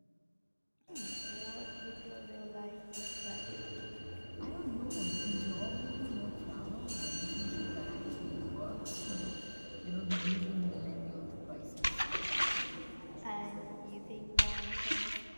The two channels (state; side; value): inverted; both; correlation -1.00